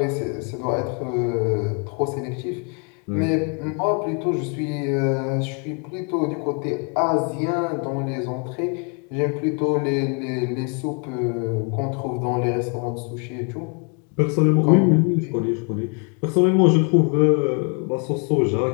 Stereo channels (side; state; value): right; quieter; 37.1 dB